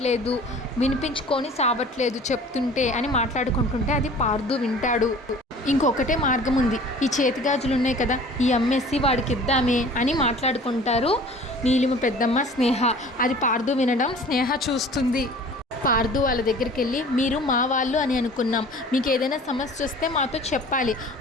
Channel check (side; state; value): both; normal; correlation 0.46